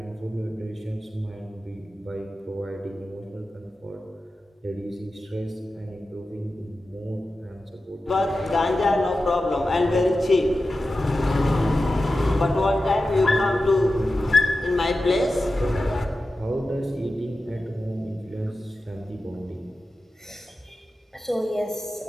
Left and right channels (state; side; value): normal; both; correlation 0.93